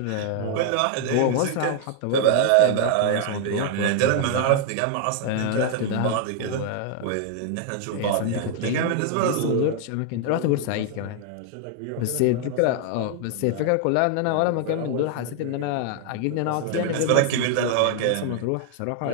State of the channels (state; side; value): different; both; correlation 0.00